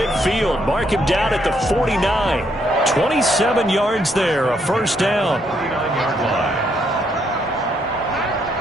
Mark him down at the 49. 27 yards there, a first down.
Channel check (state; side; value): normal; both; correlation 0.73